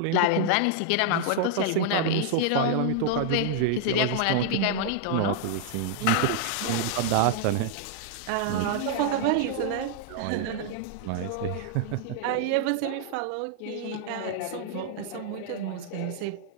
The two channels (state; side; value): different; both; correlation -0.01